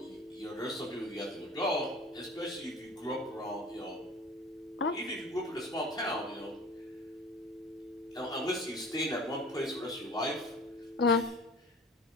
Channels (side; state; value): both; normal; correlation 0.42